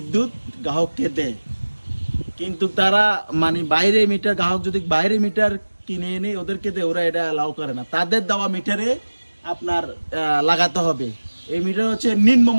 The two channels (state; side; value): inverted; both; correlation -1.00